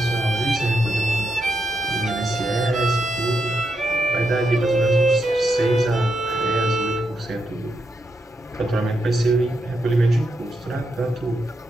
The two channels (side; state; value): both; normal; correlation 0.83